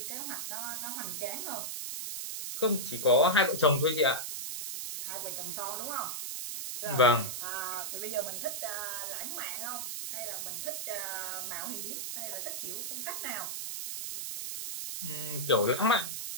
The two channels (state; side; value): noise; right; hiss, 4 dB below the sound